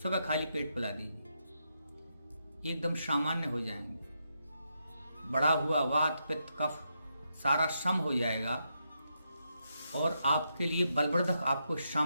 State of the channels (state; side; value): inverted; both; correlation -0.82